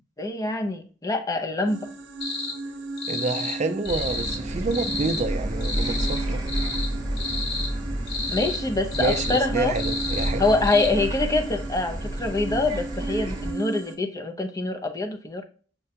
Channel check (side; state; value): both; normal; correlation 0.57